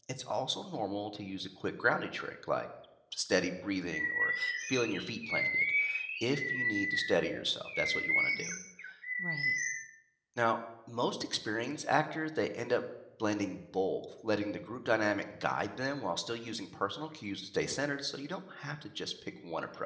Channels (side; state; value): both; identical; correlation 1.00